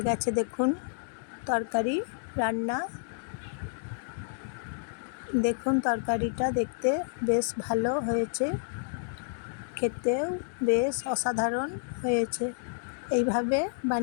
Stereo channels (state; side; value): silent; right; digital silence